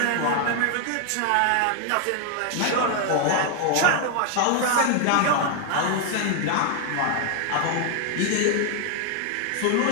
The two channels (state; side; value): different; both; correlation 0.00